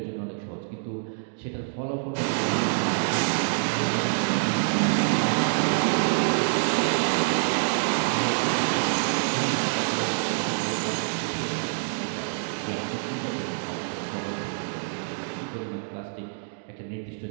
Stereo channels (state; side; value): silent; left; digital silence